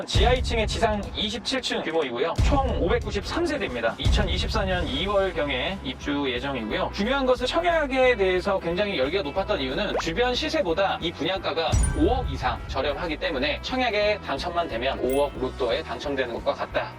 지하 2층에 지상 27층 규모이고요. 총 593세대입니다. 2024년 2월경에 입주 예정이고요. 중요한 것은 청약에 대해서 굉장히 열기가 높았던 이유는 주변 시세보다 이 분양가가 5억 이상 저렴하기 때문에 청약에 당첨만 되면 5억 로또에 당첨되는 것과 같다.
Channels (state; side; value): identical; both; correlation 1.00